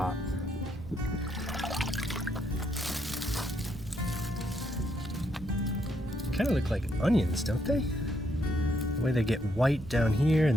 Kind of look like onions, don't they? The way they get white down here,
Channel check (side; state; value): right; noise; rumble, 14 dB below the sound